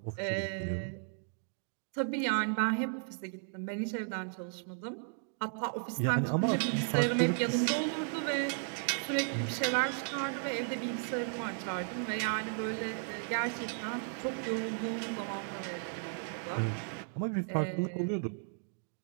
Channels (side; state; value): left; silent; 55 dB below the other